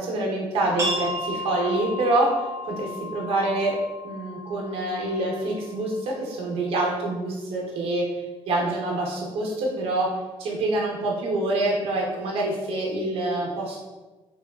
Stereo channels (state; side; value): normal; both; correlation 0.45